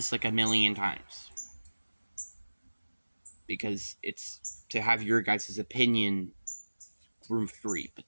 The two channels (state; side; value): inverted; both; correlation -1.00